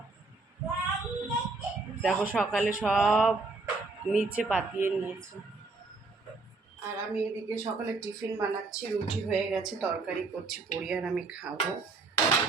দেখো সকালে সব নিচে পাতিয়ে নিয়েছে। আর আমি এদিকে সকালে টিফিন বানাচ্ছি, রুটি হয়ে গেছে, তরকারি করছি, পড়ি আর আমি খাবো।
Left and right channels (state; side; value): quieter; left; 3.7 dB